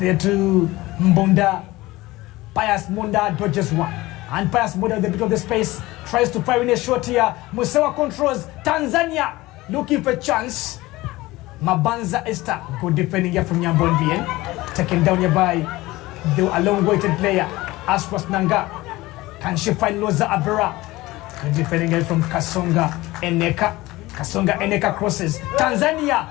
to Mbonda. Pius Munda dodges one. And Pius Munda at the bit of the space. Tries to fire in a shot here. Musewa controls. Tanzania looking for a chance. Mabanza Esther. Good defending here from Nyambon Bien. Taken down here by the long-waited player. Ashras Nanga. Can she find Rosa Abela? Good defending here from Kasonga Eneka. Kasonga Eneka crosses.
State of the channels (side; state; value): right; quieter; 19.2 dB